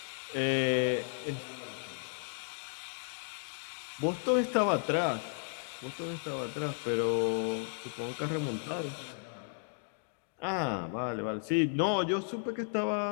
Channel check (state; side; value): silent; right; digital silence